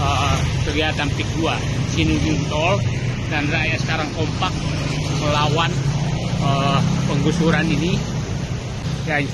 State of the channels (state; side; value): identical; both; correlation 1.00